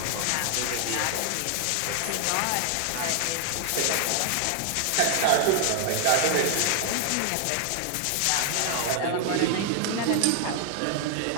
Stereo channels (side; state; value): both; different; correlation 0.00